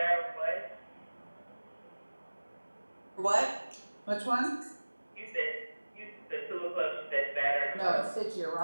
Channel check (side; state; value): both; inverted; correlation -1.00